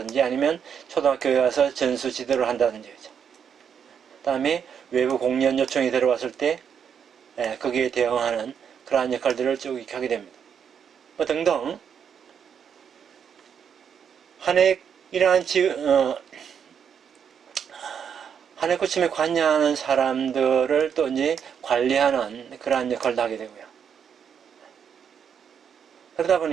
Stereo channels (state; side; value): quieter; left; 7.6 dB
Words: 아니면 초등학교에 가서 전수 지도를 한다든지, 그 다음에 외부 공연 요청이 들어왔을 때 거기에 대응하는 그러한 역할들을 쭉 하게 됩니다. 뭐 등등 이러한 한해꽃춤에 관여하는 사람들을 또 이제 관리하는 그러한 역할도 하게 되고요. 그러다